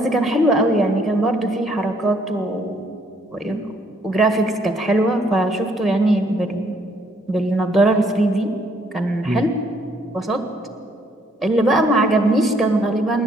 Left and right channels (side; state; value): both; normal; correlation 0.67